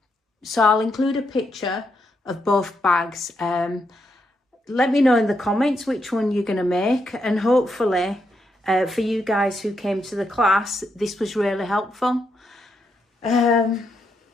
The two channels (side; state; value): both; normal; correlation 0.80